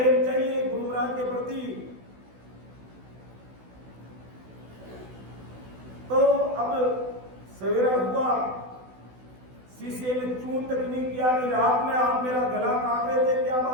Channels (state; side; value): late; left; 16 ms